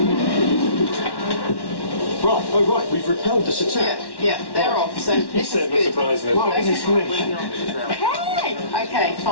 Right, we've repelled this attack. Yeah, they're off, so this is good. Okay,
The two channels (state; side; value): late; right; 1.1 ms